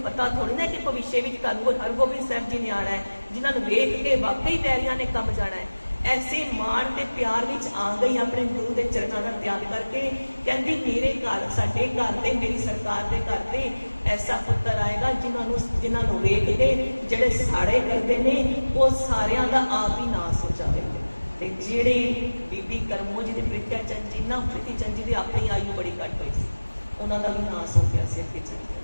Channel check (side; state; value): both; inverted; correlation -1.00